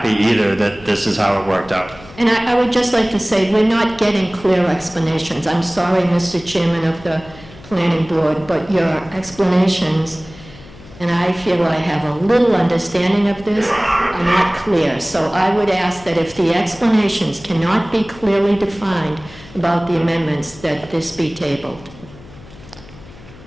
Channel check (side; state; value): left; noise; hum, 20 dB below the sound